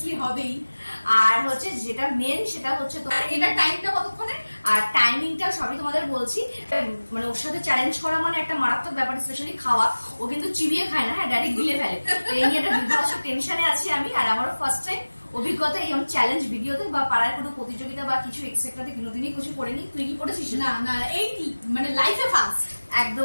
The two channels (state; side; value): inverted; both; correlation -1.00